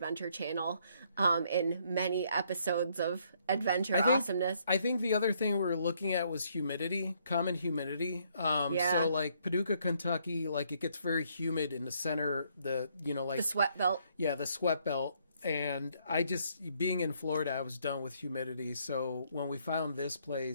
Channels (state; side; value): inverted; both; correlation -0.69